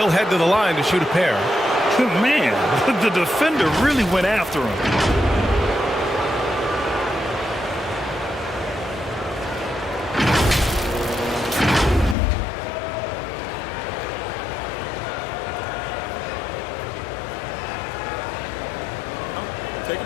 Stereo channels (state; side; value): drops out; right; at 12.2 s